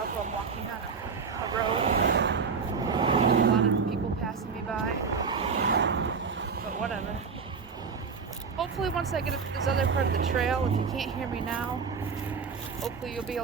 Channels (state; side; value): quieter; left; 5.5 dB